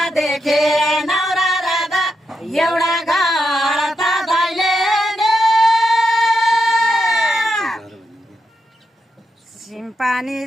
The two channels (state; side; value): normal; both; correlation 0.84